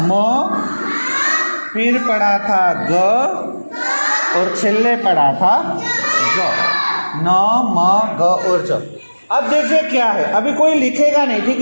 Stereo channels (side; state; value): both; inverted; correlation -1.00